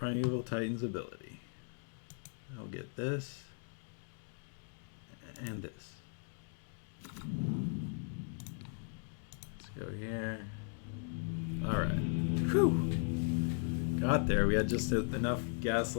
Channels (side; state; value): right; silent; 53 dB below the other